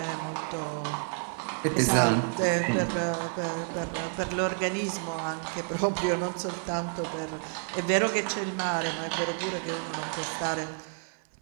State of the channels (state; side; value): silent; left; 58 dB below the other